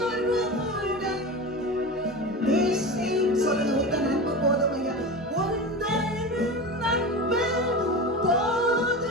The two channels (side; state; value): both; normal; correlation 0.27